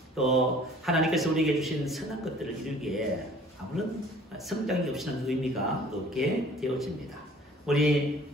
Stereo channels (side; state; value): both; normal; correlation 0.51